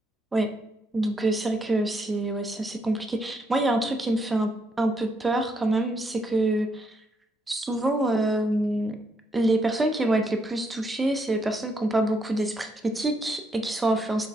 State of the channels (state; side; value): normal; both; correlation 0.76